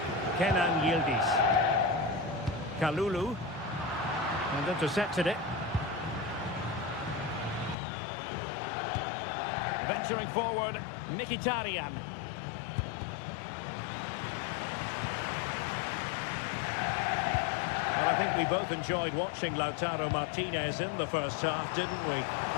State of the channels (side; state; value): right; drops out; at 7.8 s